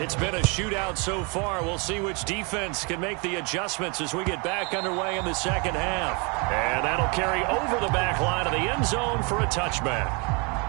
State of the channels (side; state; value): left; quieter; 32.4 dB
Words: it's been a shootout so far. We'll see which defense can make the adjustments as we get back underway in the second half. And that'll carry over the back line of the end zone for a touchback.